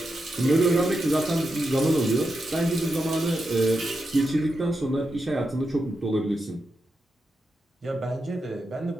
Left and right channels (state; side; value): normal; both; correlation 0.87